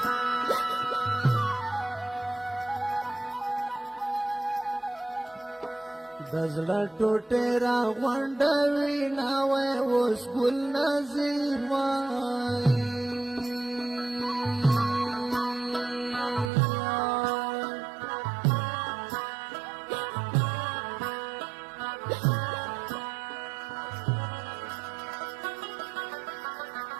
د زړه ټوټې را غونډوي نا وای اوس ګل نظیر وای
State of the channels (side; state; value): left; drops out; at 16.5 s